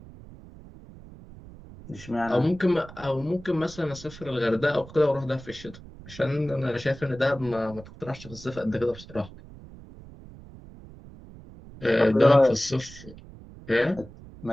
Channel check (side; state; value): right; noise; rumble, 18 dB below the sound